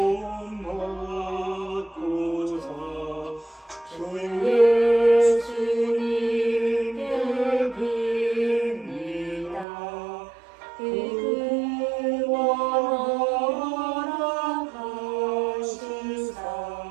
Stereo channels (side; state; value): left; drops out; at 9.7 s